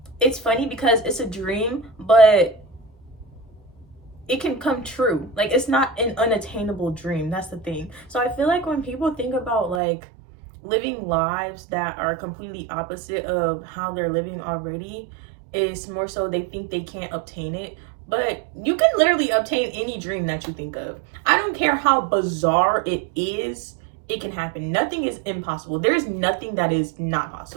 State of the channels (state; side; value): drops out; left; at 9.8 s